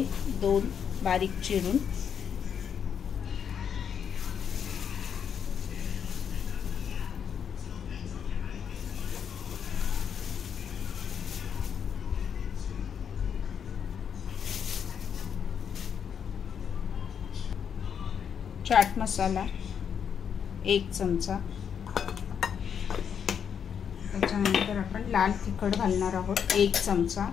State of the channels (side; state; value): right; quieter; 7.7 dB